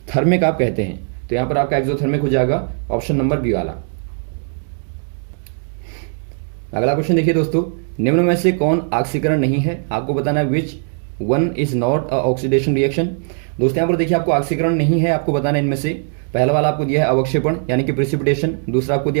आप कहते हैं। तो यहाँ पर आपका एक्सोथर्मिक हो जाएगा ऑप्शन नंबर बी वाला। अगला क्वेश्चन देखिए दोस्तों, निम्न में से कौन ऑक्सीकरण नहीं है। आपको बताना है which one is not a oxidation reaction. दोस्तों यहाँ पर देखिए आपको ऑक्सीकरण नहीं है, आपको बताना है इनमें से। पहला वाला आपको दिया है अवक्षेपण यानी कि प्रिसिपिटेशन, दूसरा आपको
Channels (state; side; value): silent; left; 57 dB below the other